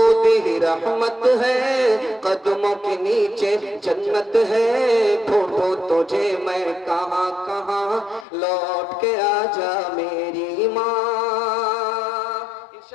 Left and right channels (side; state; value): right; drops out; at 8.2 s